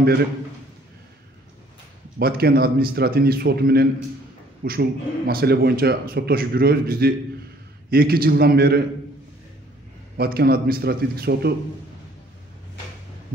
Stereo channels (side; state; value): both; normal; correlation 0.59